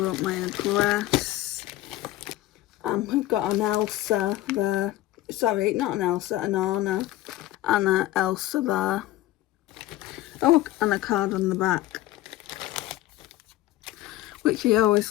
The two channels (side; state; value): right; quieter; 15.6 dB